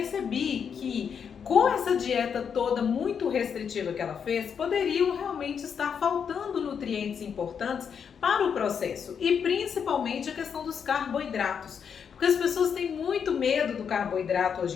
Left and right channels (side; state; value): right; quieter; 7.1 dB